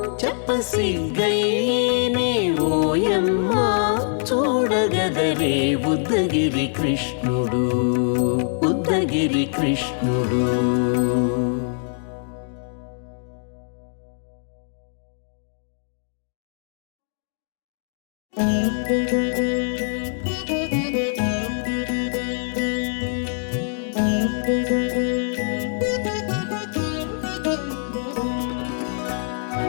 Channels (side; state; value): right; silent; digital silence